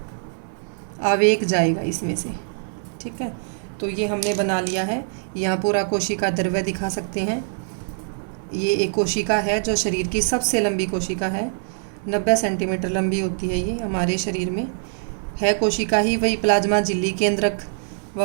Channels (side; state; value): left; silent; 63 dB below the other